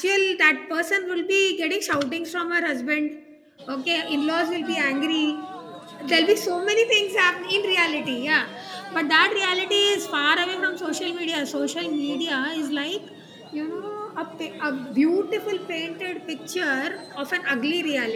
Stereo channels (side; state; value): both; identical; correlation 1.00